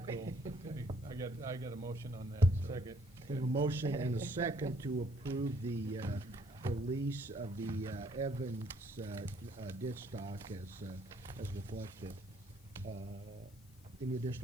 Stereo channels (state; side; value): noise; left; hiss, 29 dB below the sound